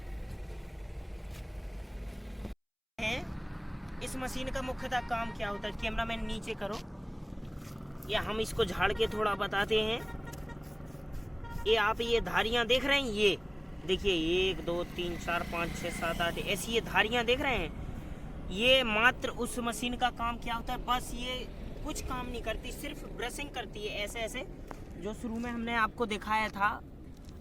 इस मशीन का मुख्यतः काम क्या होता है, कैमरामैन नीचे करो, या हम इसको झाड़ के थोड़ा बताते हैं। ये आप ये धारियां देख रहे हैं, ये देखिए 1 2 3 4 5 6 7 8 ऐसी ये धारियां देख रहे हैं। ये मात्र उस मशीन का काम क्या होता है, बस ये कुछ काम नहीं करती, सिर्फ ब्रशिंग करती है। ऐसे ऐसे जो शुरू में हमने आपको दिखाया था,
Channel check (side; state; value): both; identical; correlation 1.00